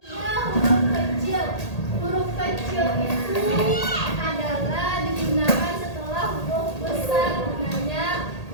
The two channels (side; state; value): right; late; 1.8 ms